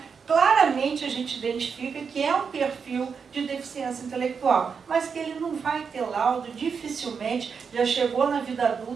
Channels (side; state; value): left; quieter; 6.0 dB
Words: claramente a gente identifica que é um perfil de deficiência intelectual, mas que ele não vai ter laudo, dificilmente, já chegou na vida